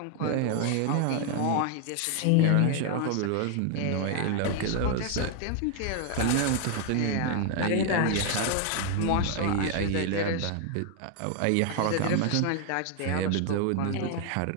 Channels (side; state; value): both; different; correlation 0.00